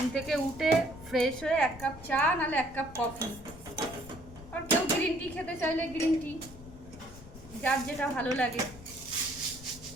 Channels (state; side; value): noise; left; rumble, 17 dB below the sound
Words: থেকে উঠে ফ্রেশ হয়ে 1 কাপ চা নাহলে 1 কাপ কফি, আর কেউ গ্রিন টি খেতে চাইলে গ্রিন টি, যার যেটা ভালো লাগে।